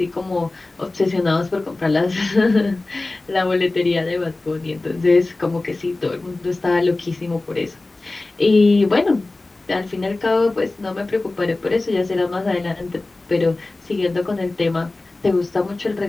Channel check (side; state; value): right; quieter; 3.1 dB